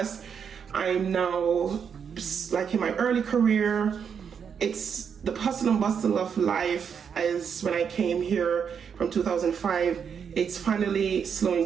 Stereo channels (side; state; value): left; quieter; 7.1 dB